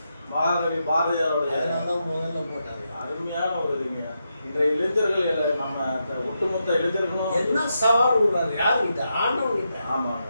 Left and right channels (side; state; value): both; inverted; correlation -0.85